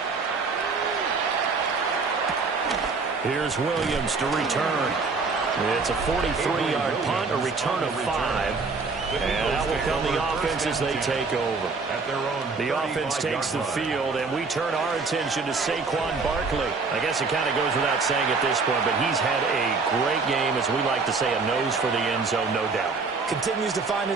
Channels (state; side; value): quieter; left; 4.3 dB